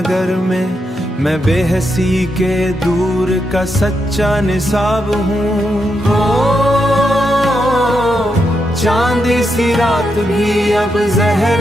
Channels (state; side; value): normal; both; correlation 0.83